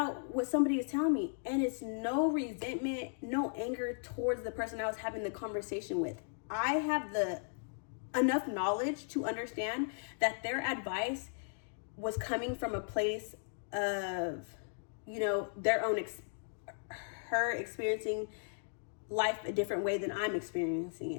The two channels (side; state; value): right; silent; digital silence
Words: what somebody is telling me? And it's no resentment, no anger towards the person I was having the conversation with. I have enough knowledge to understand that their advice was coming from a place of, their own her experiencing life a different way than I'm experiencing